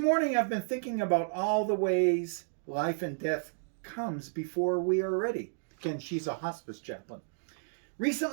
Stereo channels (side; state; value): left; silent; digital silence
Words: I've been thinking about all the ways life and death comes before we are ready. Again, she's a hospice chaplain.